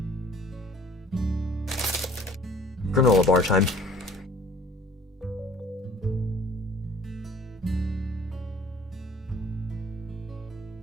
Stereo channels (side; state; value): both; normal; correlation 0.51